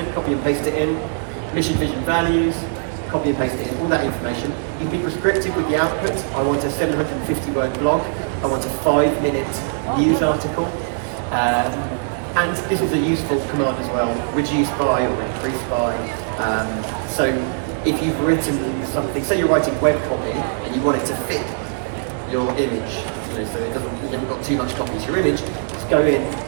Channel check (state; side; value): silent; left; 65 dB below the other